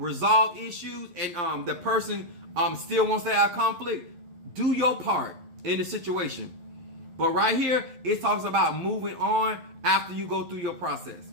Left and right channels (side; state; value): left; late; 11 ms